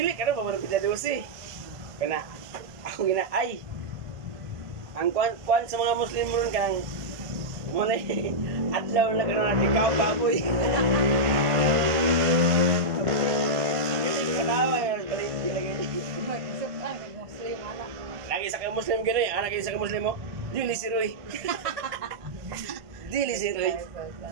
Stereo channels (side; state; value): left; late; 1.5 ms